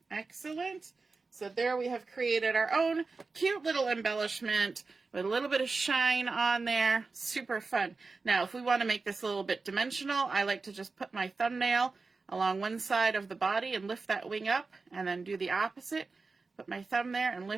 Excellent. So there we have created our own cute little embellishment with a little bit of shine on there. Super fun. Now, if we want to make this a little bit dimensional, I like to just put my thumbnail along one side of the body and lift that wing up, and then do the opposite. Put my thumb there and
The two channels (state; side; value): quieter; left; 4.1 dB